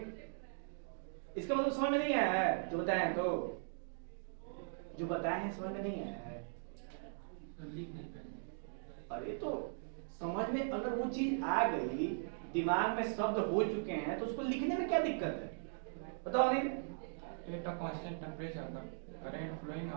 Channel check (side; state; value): left; silent; digital silence